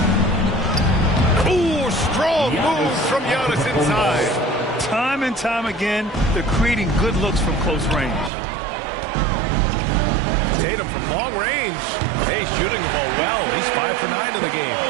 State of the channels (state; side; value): drops out; left; at 8.3 s